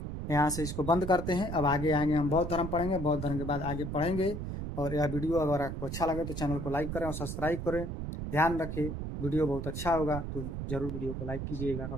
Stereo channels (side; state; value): right; noise; rumble, 5 dB below the sound